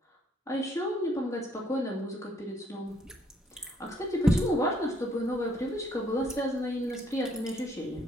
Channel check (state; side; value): normal; both; correlation 0.67